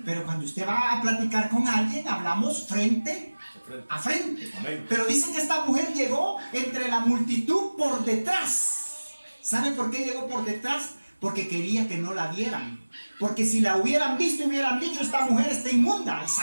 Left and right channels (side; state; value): both; inverted; correlation -1.00